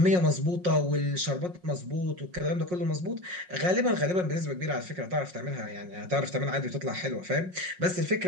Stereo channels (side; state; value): left; late; 5.5 ms